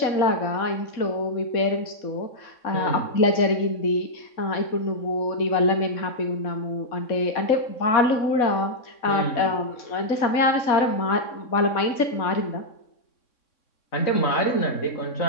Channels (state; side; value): late; right; 3.6 ms